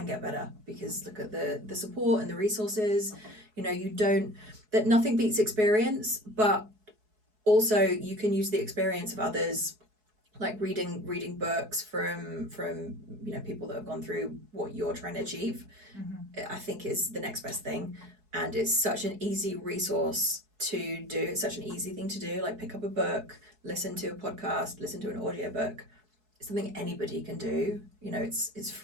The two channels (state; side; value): late; left; 4.7 ms